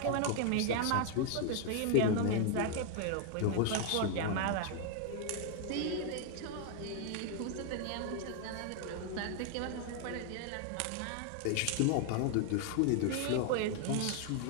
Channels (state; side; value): different; both; correlation 0.00